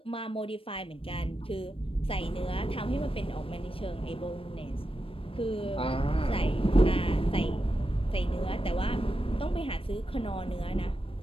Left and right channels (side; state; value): right; late; 0.26 ms